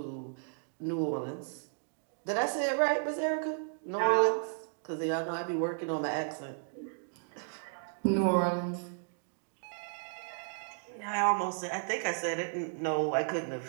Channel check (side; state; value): left; silent; digital silence